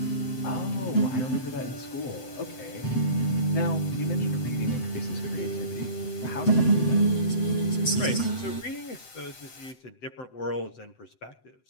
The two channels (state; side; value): late; right; 7.8 ms